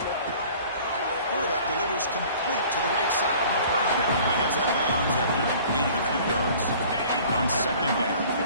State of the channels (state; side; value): inverted; both; correlation -0.49